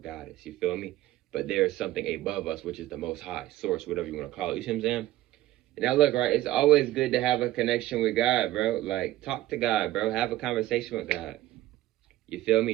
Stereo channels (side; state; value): left; quieter; 15.4 dB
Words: You feel me? But there's something above us, which is the Most High, source, whatever you want to call it. You see what I'm saying? Now, look, right, it's always good to have a connection with God, bro. Like, talk to God, bro. Have a conversation with God. You feel me?